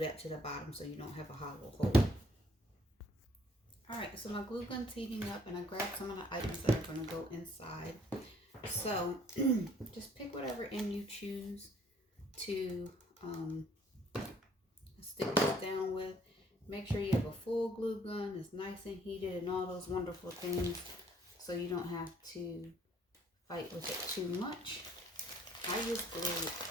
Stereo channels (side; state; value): both; normal; correlation 0.61